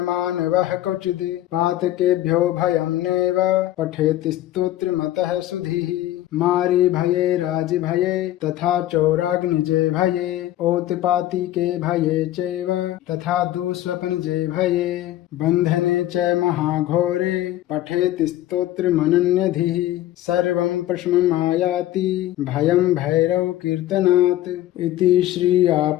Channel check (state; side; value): quieter; right; 14.1 dB